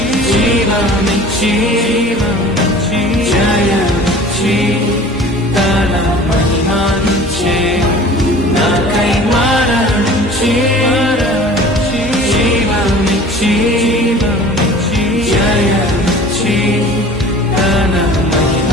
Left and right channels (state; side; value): normal; both; correlation 0.44